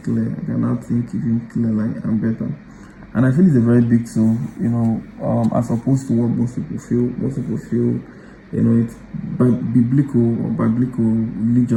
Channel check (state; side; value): identical; both; correlation 1.00